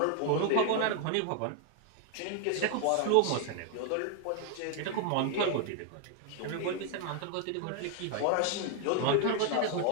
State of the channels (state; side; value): different; both; correlation 0.00